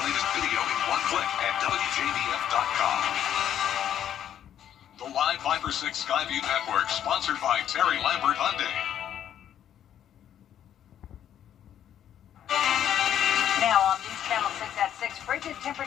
latest video in one click at WJBF.com. The Live Viper 6 Skyview Network, sponsored by Terry Lambert Hyundai. Now on News Channel 6 at 6, frigid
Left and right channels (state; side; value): quieter; right; 10.2 dB